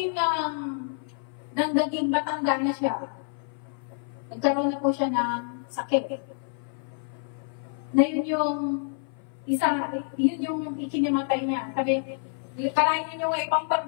ng naging matanda na siya, nagkaroon na po siya ng sakit. Na yun yung ikinimatay niya. Sabi, karayin niyo yung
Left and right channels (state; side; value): silent; right; 58 dB below the other